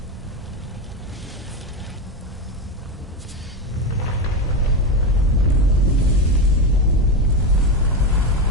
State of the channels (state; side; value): normal; both; correlation 0.15